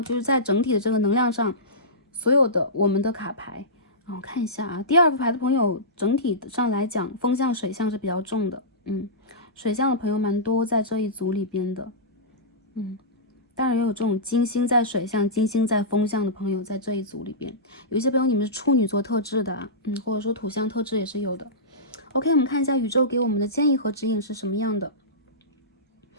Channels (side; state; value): both; normal; correlation -0.18